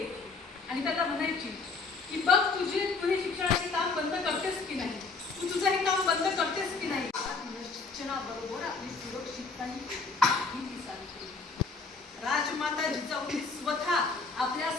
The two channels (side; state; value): right; quieter; 4.2 dB